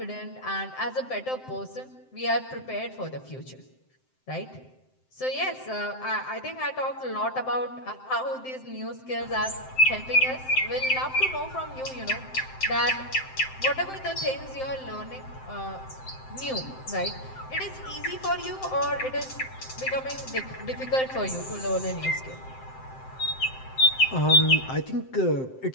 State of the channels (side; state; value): right; late; 7.7 ms